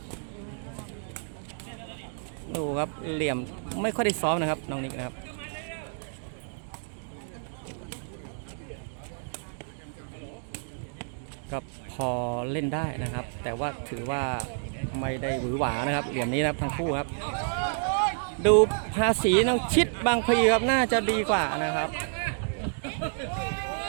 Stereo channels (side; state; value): left; silent; digital silence